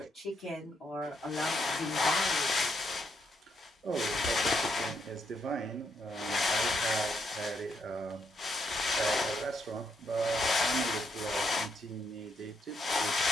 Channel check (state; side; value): normal; both; correlation 0.76